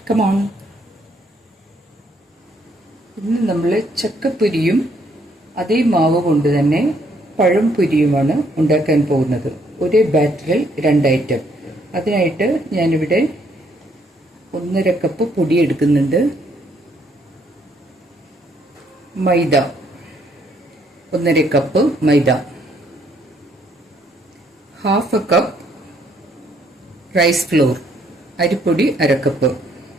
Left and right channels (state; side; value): normal; both; correlation 0.69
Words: കമോൺ. ഇന്ന് നമ്മൾ ചക്കപ്പൊരിയും അതേ മാവ് കൊണ്ട് തന്നെ പഴം പൊരിയുമാണ് ഉണ്ടാക്കാൻ പോകുന്നത്. ഒരേ ബാറ്ററിൽ രണ്ട് ഐറ്റം. അതിനായിട്ട് ഞാനിവിടെ 1.5 കപ്പ് പൊടി എടുക്കുന്നുണ്ട്. മൈദ 1.5 കപ്പ് മൈദ, 1/2 കപ്പ് റൈസ് ഫ്ലോർ, അരിപ്പൊടി 1/2 കപ്പ്,